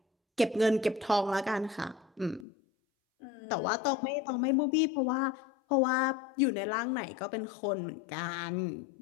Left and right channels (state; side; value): drops out; right; at 2.5 s